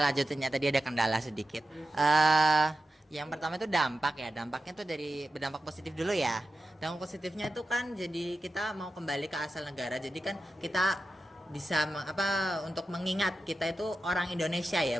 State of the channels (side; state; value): both; normal; correlation 0.92